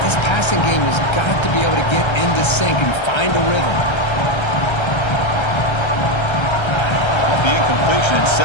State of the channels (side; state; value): right; late; 1.3 ms